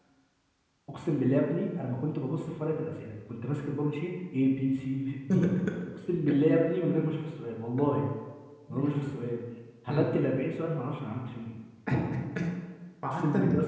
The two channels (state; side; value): identical; both; correlation 1.00